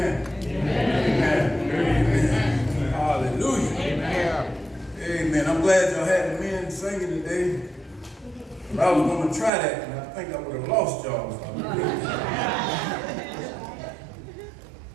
Amen. Amen. Hallelujah. Amen. Amen. I'm glad y'all had the men singing today. I was going to try that, and I think I would have lost y'all if I would.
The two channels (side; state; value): left; drops out; at 9.5 s